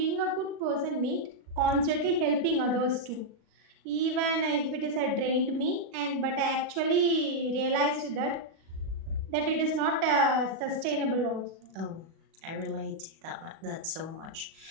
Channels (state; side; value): late; left; 37 ms